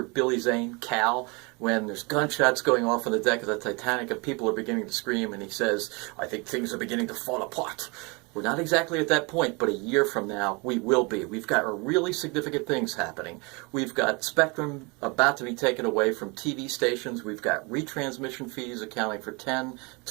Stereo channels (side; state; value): left; quieter; 29.2 dB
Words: Billy Zane, Cal, when there's gunshots going off on the deck of the Titanic and people are beginning to scream and he says, I think things are beginning to fall apart. We're not exactly at that point, but a year from now, we will be. We've got really significant things happening. We've got spectrum about to be taken away from TV stations. We've got retransmission fees accounting for 10,